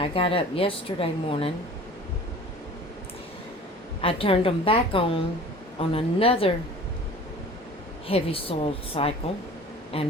got up yesterday morning, I turned them back on another heavy-soled cycle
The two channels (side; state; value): both; normal; correlation 0.43